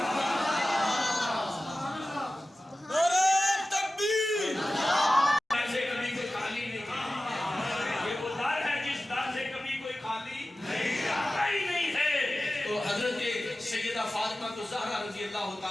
فاطمہ الزہرا رضی اللہ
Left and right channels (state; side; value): normal; both; correlation 0.96